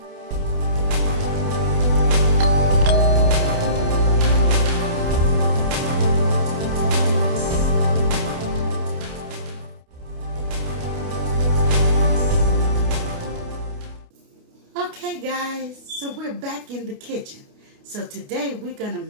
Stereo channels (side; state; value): left; late; 29 ms